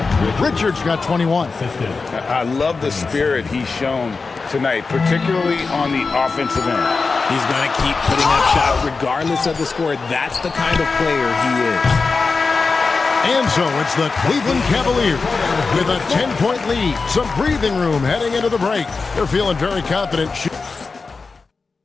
Richards got 21. I love the spirit he's shown tonight, particularly on the offensive end. He's going to keep putting up shots regardless of the score. That's the kind of player he is. And so it's the Cleveland Cavaliers with a 10-point lead. Some breathing room heading into the break. They're feeling very confident.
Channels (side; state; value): right; quieter; 4.3 dB